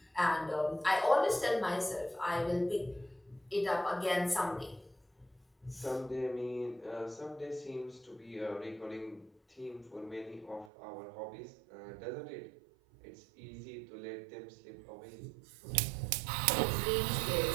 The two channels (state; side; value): drops out; left; at 10.7 s